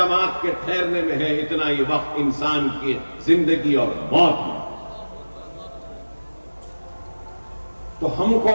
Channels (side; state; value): both; inverted; correlation -1.00